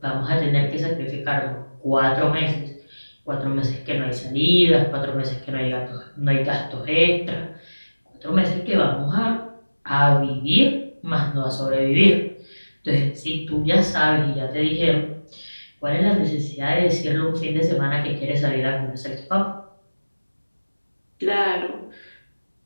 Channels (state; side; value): inverted; both; correlation -1.00